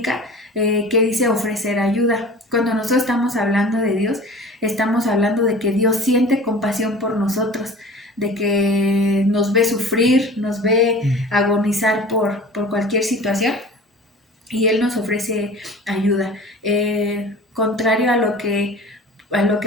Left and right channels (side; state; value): both; normal; correlation 0.41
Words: que dice ofrecer ayuda. Cuando nosotros estamos hablando de Dios, estamos hablando de que Dios siente compasión por nosotros, de que nos ve sufrir, nos ve agonizar por cualquier situación y Él nos ofrece ayuda. Contrario a lo que